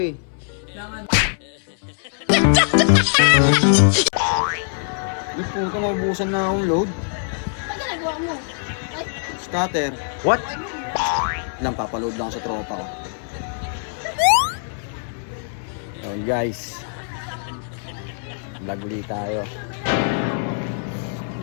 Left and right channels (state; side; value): silent; right; 64 dB below the other